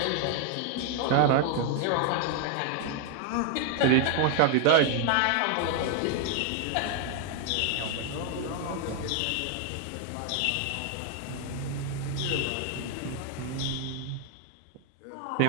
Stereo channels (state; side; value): different; both; correlation 0.00